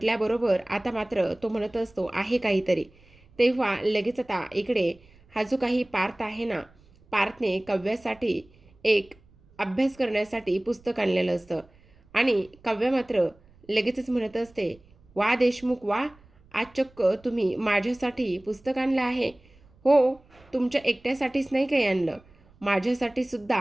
आता मात्र तो म्हणत असतो, आहे काहीतरी. तेव्हा लगेच आता इकडे हा जो काही पार्थ आहे ना, पार्थने काव्यासाठी एक अभ्यास करण्यासाठी पुस्तक आणलेलं असतं आणि काव्या मात्र लगेचच म्हणत असते, वा देशमुख वा, आज चक्क तुम्ही माझ्यासाठी पुस्तक आणलं आहे. हो, तुमच्या एकट्यासाठीच नाही काही आणलं, माझ्यासाठी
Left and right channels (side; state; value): right; noise; rumble, 29 dB below the sound